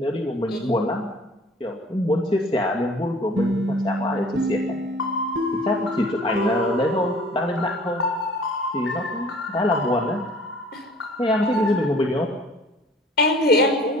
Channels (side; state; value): both; normal; correlation 0.50